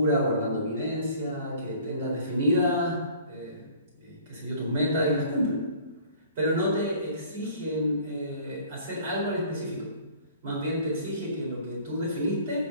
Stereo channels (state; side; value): inverted; both; correlation -0.51